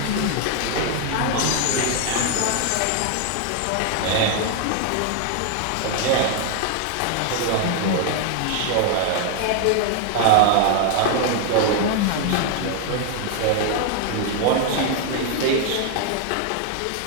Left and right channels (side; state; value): both; different; correlation 0.00